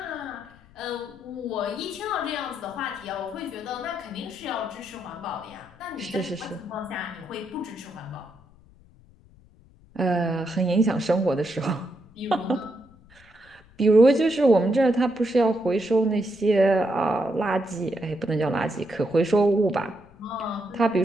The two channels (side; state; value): left; noise; rumble, 27 dB below the sound